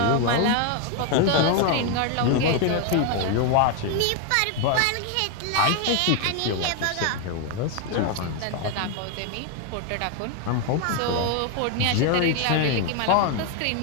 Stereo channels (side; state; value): both; different; correlation 0.01